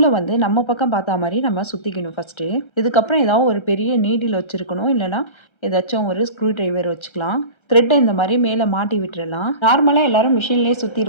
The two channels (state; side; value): late; right; 1.3 ms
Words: வந்து நம்ம பக்கம் பார்த்தா மாதிரி நம்ம சுற்றிக்கணும் ஃபஸ்ட்டு. இதுக்கப்புறம் ஏதாவது ஒரு பெரிய நீடில் வச்சுருக்கணும், இல்லைனா ஏதாச்சும் ஒரு ஸ்க்ரூ ட்ரைவர் வச்சுக்கலாம். த்ரெட்டை இந்த மாதிரி மேலே மாட்டி விட்டுறலாம். நார்மலாக எல்லாரும் மிஷின்லேயே